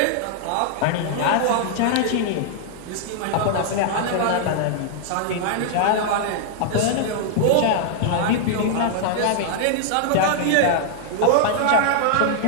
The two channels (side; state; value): both; different; correlation -0.01